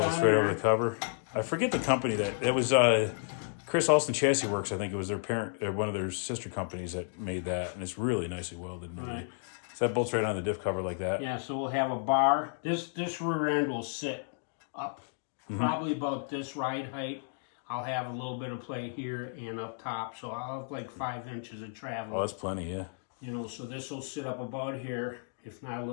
on right there. over the cover. I forget the company that it was. Chris Alston Chassis Works, I think it was their parent, or one of their sister companies that made that, and it's really nicely welded. Right. So that bolts right on the diff cover like that. Yeah, so we'll have a bar. This rear end will sit up, probably about this ride height. I'll have a little bit of play here and up top, so I'll have like 5 inches of travel. Oh, that's plenty, yeah. You know, so this will sit up about here, if not a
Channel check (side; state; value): right; silent; digital silence